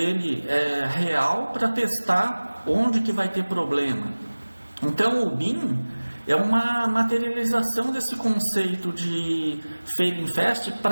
real para testar onde que vai ter problema. Então o BIM é uma materialização desse conceito de failing fast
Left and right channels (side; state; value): both; inverted; correlation -1.00